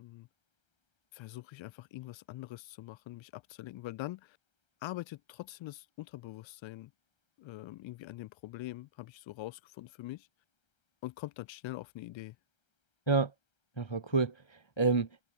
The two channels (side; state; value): right; late; 1.3 ms